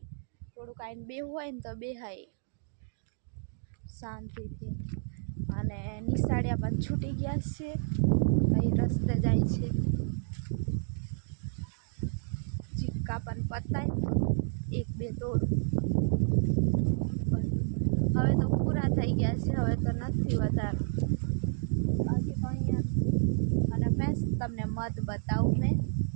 થોડુંક આવીને બેહવું હોય ને તો બેહાય શાંતિથી. અને નિશાળિયા પણ છૂટી ગયા છે, અહીં રસ્તે જાય છે. ચીક્કા પણ પતાય 1-2 તોડું, હવે તો પૂરા થઈ ગયા છે. હવે તો નથી વધારે બાકી તો અહીંયા. અને ફ્રેન્ડ્સ તમને મધ બતાવું મેં.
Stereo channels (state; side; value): silent; left; digital silence